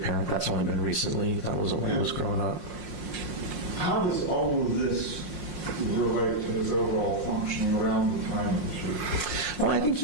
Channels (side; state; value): left; late; 5.6 ms